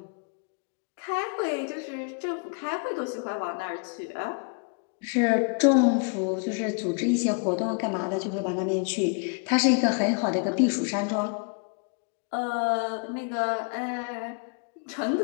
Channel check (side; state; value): right; quieter; 37.6 dB